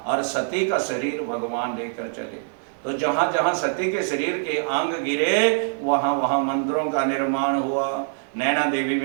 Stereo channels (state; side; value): silent; left; digital silence